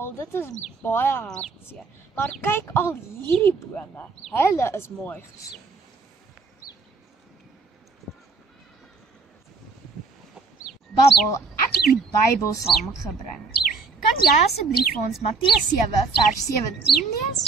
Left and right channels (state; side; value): quieter; left; 4.3 dB